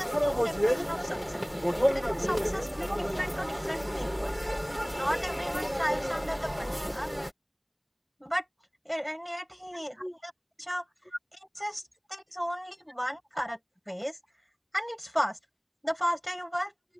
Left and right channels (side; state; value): both; identical; correlation 1.00